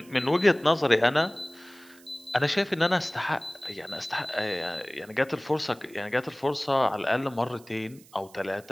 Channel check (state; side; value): noise; right; hiss, 25 dB below the sound